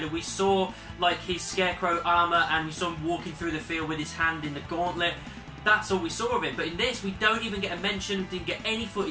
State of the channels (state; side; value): identical; both; correlation 1.00